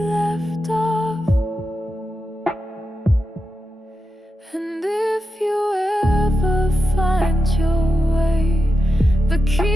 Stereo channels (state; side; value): normal; both; correlation 0.89